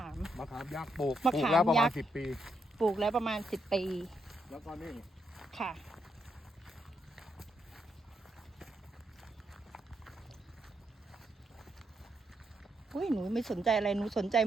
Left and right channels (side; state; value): both; normal; correlation 0.80